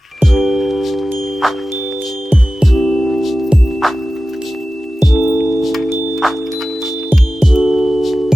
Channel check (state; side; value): normal; both; correlation 0.95